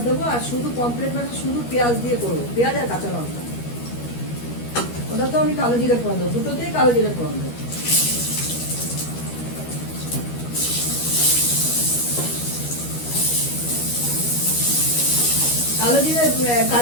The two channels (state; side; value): late; right; 13 ms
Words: দেবো। আর শুধু পমফ্রেট মাছে শুধু পেঁয়াজ দিয়ে করবো, পেঁয়াজ আর কাঁচা লঙ্কা। ওটা তো আমি কালো জিরে ফোড়ন দেবো, দুটোতেই কালো জিরে ফোড়ন দেবো। কালো জিরে